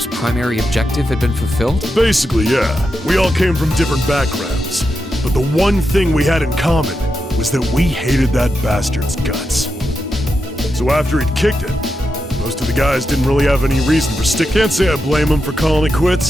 primary objective had been fulfilled? Basically, yeah. We all came from different backgrounds. But the one thing we had in common was that we hated that bastard's guts. So after he'd kicked it, most of the guys didn't really have any reason for stick. Can't say I blame him for calling it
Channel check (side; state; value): both; normal; correlation 0.87